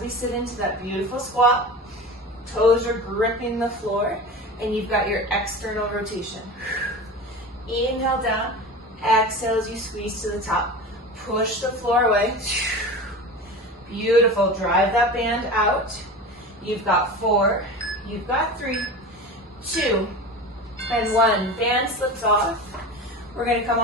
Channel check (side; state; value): both; normal; correlation 0.31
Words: we sit into that beautiful squat. Toes are gripping the floor, and you've got your external rotation. Inhale down, exhale as you squeeze to the top. Push the floor away. Beautiful. Drive that band out. You've got 4, you've got 3, 2, and 1. Band slips off. We're going to come